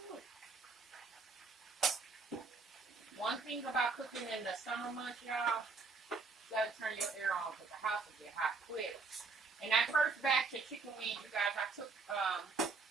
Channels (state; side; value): quieter; left; 4.3 dB